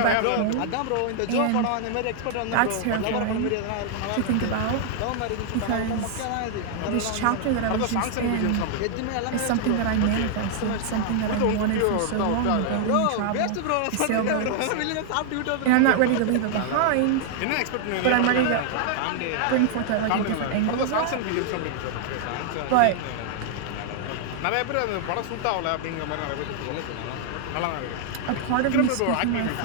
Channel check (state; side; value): different; both; correlation -0.01